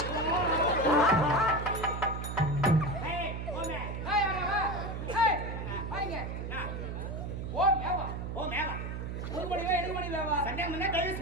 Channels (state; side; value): noise; right; hum, 5 dB below the sound